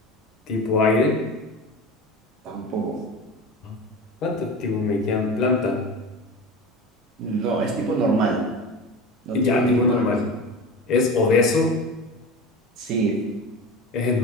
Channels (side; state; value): both; normal; correlation 0.30